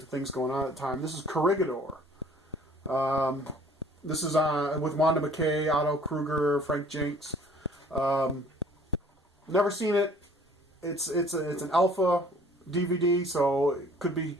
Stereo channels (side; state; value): both; normal; correlation 0.54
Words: things going on at the time. This is Corregidor. This is with Wanda McKay, Otto Kruger, Frank Jenks. Never seen it. It's an alpha DVD, so it could be